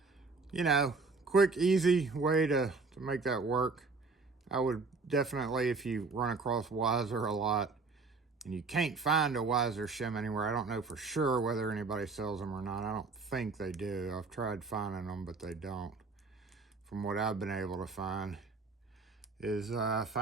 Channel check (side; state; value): left; quieter; 4.1 dB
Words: you know, quick, easy way to make that work. I would definitely, if you run across Weiser a lot and you can't find a Weiser shim anywhere, I don't know for sure whether anybody sells them or not. I don't think they do. I've tried finding them, but they don't. From what I've been able to find is